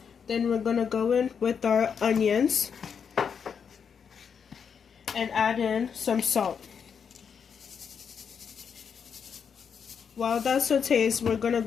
Then we're going to go in with our onions and add in some salt. While that sautés, we're going to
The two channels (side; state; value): right; quieter; 6.8 dB